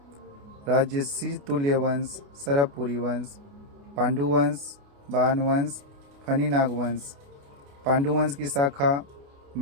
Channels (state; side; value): late; left; 28 ms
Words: राजसी तुल्य वंश, सरबपुरी वंश, पांडु वंश, बाण वंश, फणिनाग वंश। पांडु वंश की शाखा